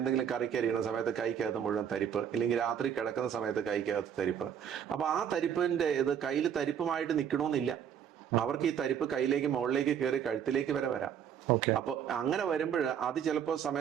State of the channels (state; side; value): quieter; left; 8.5 dB